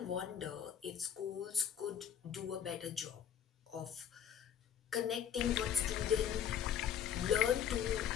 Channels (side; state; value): right; quieter; 8.9 dB